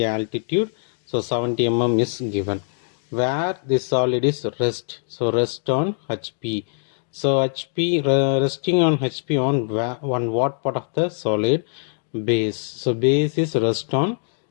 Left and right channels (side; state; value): right; silent; digital silence